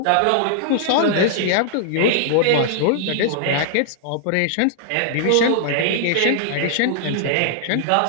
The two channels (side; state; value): both; different; correlation -0.01